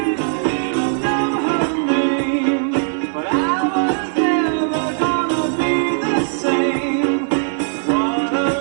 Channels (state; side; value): silent; left; 67 dB below the other